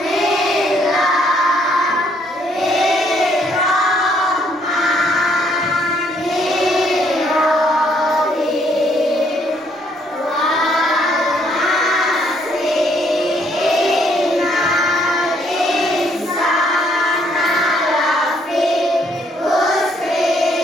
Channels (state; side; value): normal; both; correlation 0.68